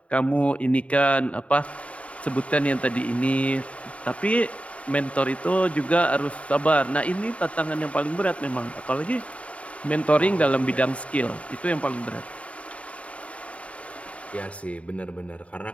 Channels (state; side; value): late; right; 0.065 ms